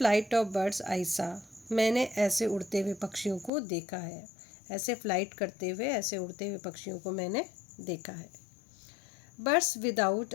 ऑफ बर्ड्स आई सा, मैंने ऐसे उड़ते हुए पक्षियों को देखा है, ऐसे फ्लाइट करते हुए, ऐसे उड़ते हुए पक्षियों को मैंने देखा है। बर्ड्स विदाउट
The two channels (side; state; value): right; drops out; at 3.5 s